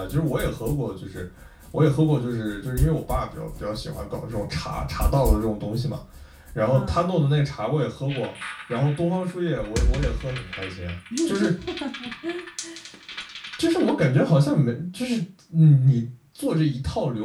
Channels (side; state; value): both; identical; correlation 1.00